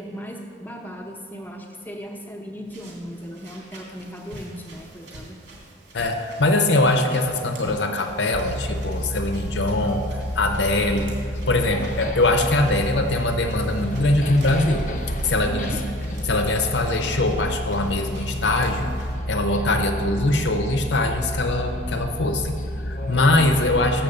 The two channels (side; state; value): both; normal; correlation 0.41